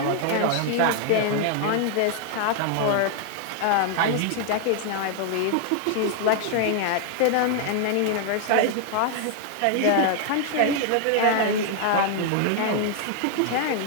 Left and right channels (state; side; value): different; both; correlation 0.00